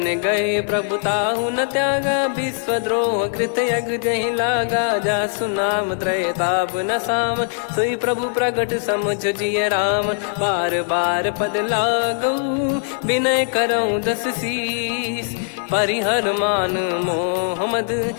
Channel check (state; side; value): silent; right; 65 dB below the other